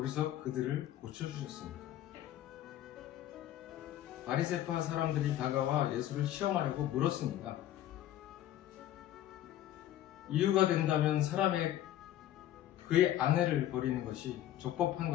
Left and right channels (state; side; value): quieter; right; 12.6 dB